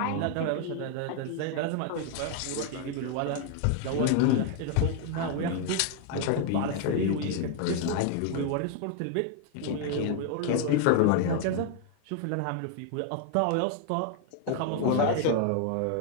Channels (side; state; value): both; different; correlation 0.00